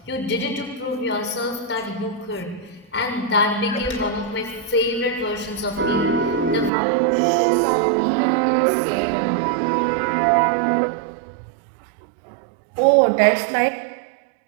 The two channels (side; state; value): left; drops out; at 6.7 s